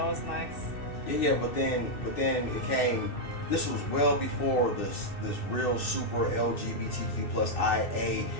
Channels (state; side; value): late; right; 2.6 ms